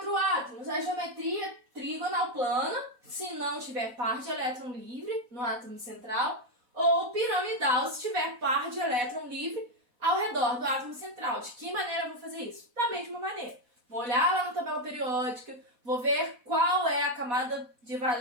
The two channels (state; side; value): late; left; 4.1 ms